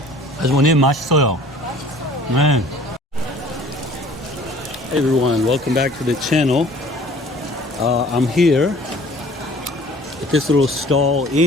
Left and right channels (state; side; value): normal; both; correlation 0.50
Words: 아주머님 맛있어요. Man. Hey everyone, welcome back to the channel. I'm here at this little stall